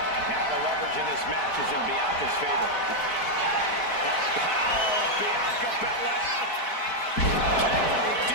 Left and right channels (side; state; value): right; late; 4.6 ms